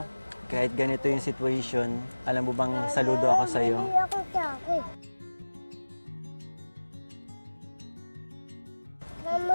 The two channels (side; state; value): both; inverted; correlation -1.00